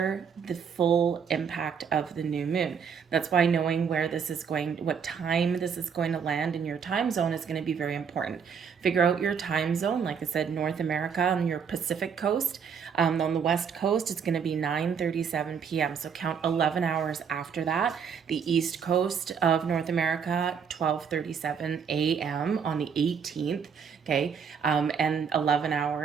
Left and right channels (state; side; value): quieter; left; 6.8 dB